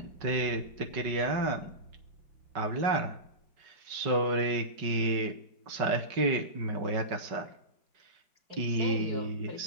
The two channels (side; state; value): left; late; 5.3 ms